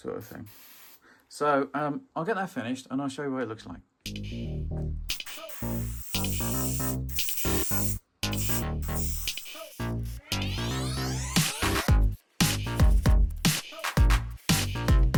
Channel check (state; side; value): identical; both; correlation 1.00